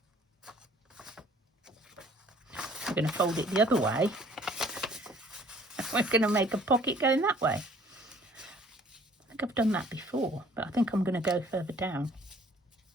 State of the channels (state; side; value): normal; both; correlation 0.56